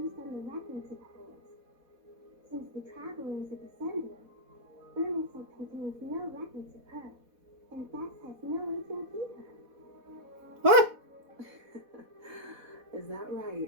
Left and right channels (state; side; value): late; left; 4.1 ms